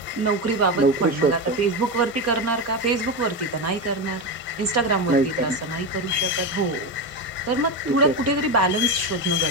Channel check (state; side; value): normal; both; correlation 0.16